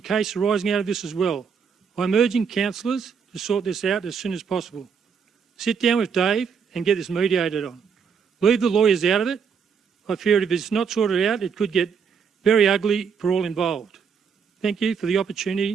case arising out of this as well. I'm urging councillors to sort this out as soon as possible. Sit down with Dave and get this mediated on. Leave the lawyers out of it. I fear if it's not sorted out, it could get very ugly for all involved. Thank you for the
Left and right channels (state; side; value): quieter; left; 6.5 dB